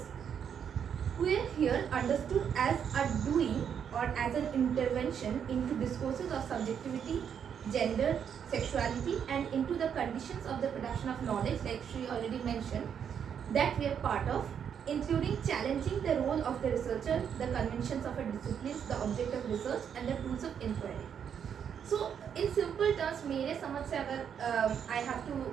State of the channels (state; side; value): quieter; left; 8.0 dB